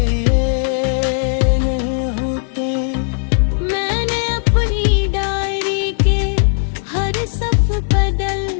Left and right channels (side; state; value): right; silent; 59 dB below the other